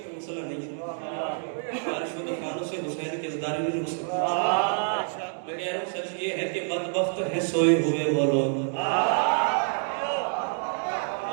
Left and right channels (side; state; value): left; silent; 60 dB below the other